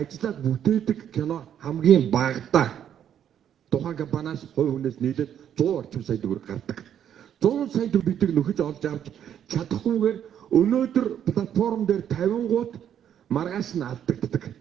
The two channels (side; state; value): left; quieter; 9.6 dB